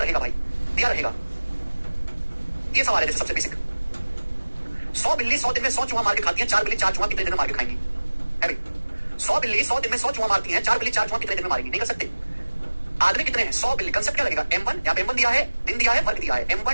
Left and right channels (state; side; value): inverted; both; correlation -1.00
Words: रहेगा भाई, दिया रहेगा। ये सवाल है जैसे सबसे बेसिक, 100 बिल्ली 100 दिन में 100 चूहा मार के खाती है, 4 बिल्ली 4 चूहा कितने दिन में मार के खाएंगी? है भाई 100 बिल्ली 100 दिन में 100 चूहा मारती हैं, 4 बिल्ली 4 चूहा कितने दिन में मारेंगी? नहीं कर सकते। आदमी कितने हैं? 100 बिल्ली। कंसेप्ट क्या लगेगा? M1, यहाँ पे M1 दिया है, दिन दिया है, वर्ग दिया है,